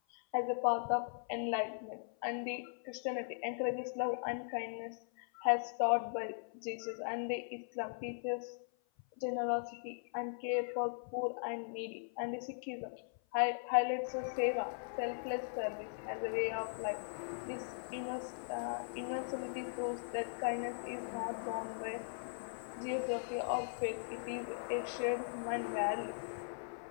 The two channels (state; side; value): silent; right; 52 dB below the other